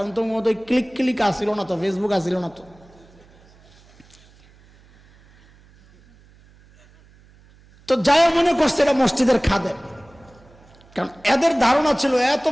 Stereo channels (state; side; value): noise; right; hum, 28 dB below the sound